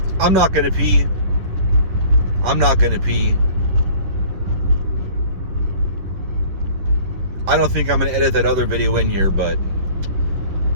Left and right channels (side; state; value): left; late; 11 ms